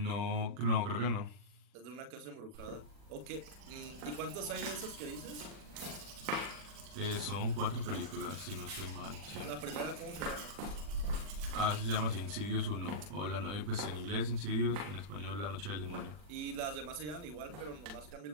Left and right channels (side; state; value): left; late; 40 ms